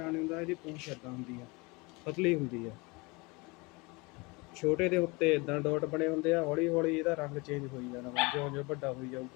ਨਹੀਂ ਹੁੰਦਾ। ਇਹਦੀ ਪੂਛ ਇੱਦਾਂ ਹੁੰਦੀ ਆ, ਪਤਲੀ ਹੁੰਦੀ ਆ। ਛੋਟੇ ਦੇ ਉੱਤੇ ਇੱਦਾਂ ਡਾਟ ਬਣੇ ਹੁੰਦੇ ਆ। ਹੌਲੀ ਹੌਲੀ ਇਹਦਾ ਰੰਗ ਚੇਂਜ ਹੋਈ ਜਾਣਾ ਵਾ, ਜਿਉਂ ਜਿਉਂ ਵੱਡਾ ਹੋਈ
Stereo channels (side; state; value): right; quieter; 26.4 dB